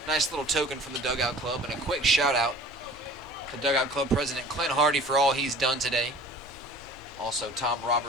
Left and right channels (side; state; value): left; noise; rumble, 22 dB below the sound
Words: Nice little token from the Dugout Club, and a quick shout out to Dugout Club President Clint Hardy for all he's done today. Also Tom